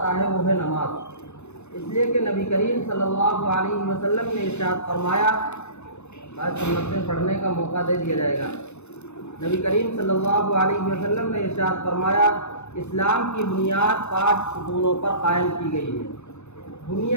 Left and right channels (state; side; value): late; right; 0.81 ms